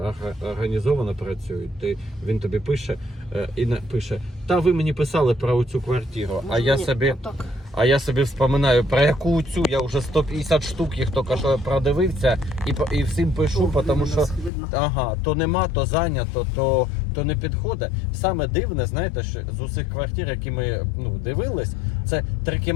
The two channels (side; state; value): right; drops out; at 14.5 s